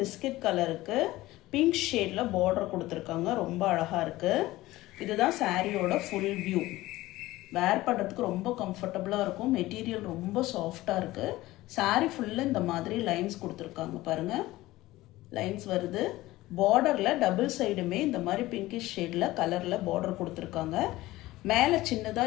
கலருக்கு பிங்க் ஷேடில் பார்டர் கொடுத்துருக்காங்க. ரொம்ப அழகாக இருக்குது. இதுதான் சாரியோட ஃபுல் வியூ. வேர் பண்ணுறதுக்கு ரொம்ப கம்ஃபர்டபுளாக இருக்கும். மெட்டீரியல் ரொம்ப சாஃப்டாக இருக்குது. சாரீ ஃபுல்லாக இந்த மாதிரி லைன்ஸ் கொடுத்துருக்காங்க பாருங்கள். லைன்ஸ் வருது. பார்டரில் டபுள் சைடுமே இந்த மாதிரி பிங்கிஷ் ஷேடில் கலரில் பார்டர் கொடுத்துருக்காங்க. மேலே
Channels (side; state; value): right; quieter; 17.7 dB